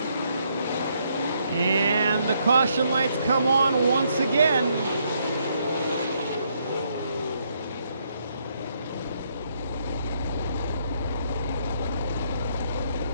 The caution lights come on once again.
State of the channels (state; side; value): inverted; both; correlation -0.73